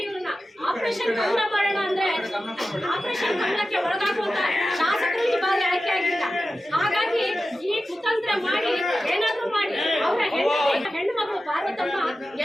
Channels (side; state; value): both; normal; correlation 0.93